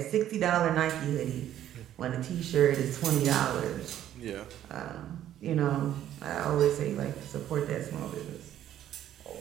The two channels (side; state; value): left; quieter; 11.6 dB